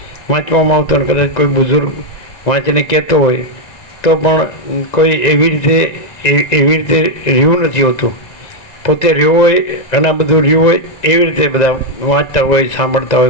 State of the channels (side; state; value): right; late; 1.9 ms